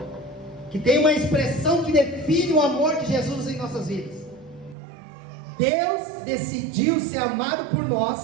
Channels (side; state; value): left; drops out; at 4.8 s